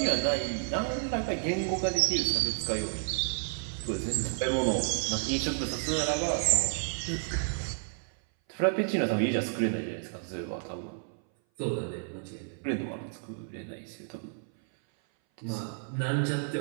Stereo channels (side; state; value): left; silent; 57 dB below the other